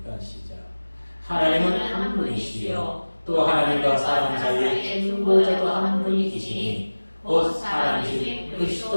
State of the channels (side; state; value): both; inverted; correlation -1.00